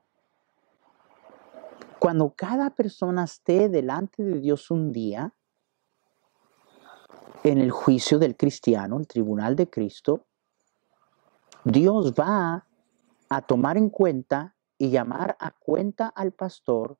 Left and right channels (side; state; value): left; silent; digital silence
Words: Cuando cada persona esté delante de Dios un día, en el juicio del cristiano, el tribunal de Cristo, Dios va a tomar en cuenta y llamar a cuenta al pastor